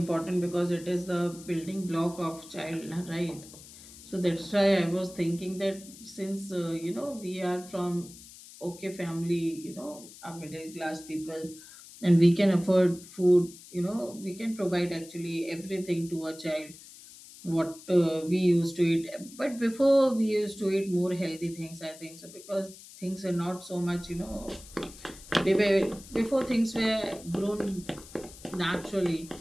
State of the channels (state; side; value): noise; left; hiss, 18 dB below the sound